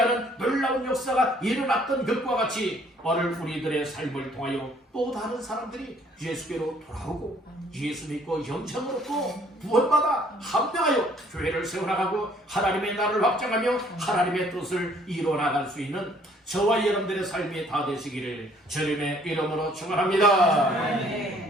놀라운 역사가 일어났던 것과 같이 오늘 우리들의 삶을 통하여 또 다른 사람들이 예수께로 돌아오고 예수 믿고 영생으로 또 구원받아 합병하여 교회를 세워나가고 하나님의 나라를 확장하며 하나님의 뜻을 이루어나갈 수 있는 저와 여러분들의 삶이 다 되시기를 주님의 이름으로 축원합니다.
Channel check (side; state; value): both; normal; correlation 0.61